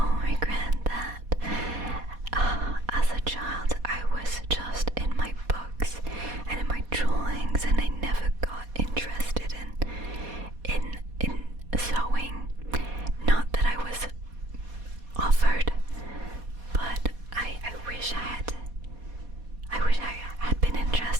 regret that as a child I was just in my books and in my drawings, and I never got interested in sewing. Not that I was offered, but I wish I had been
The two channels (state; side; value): late; left; 4.2 ms